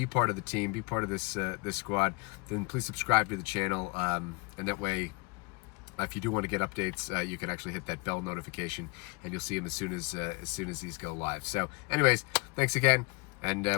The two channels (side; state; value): right; quieter; 28.4 dB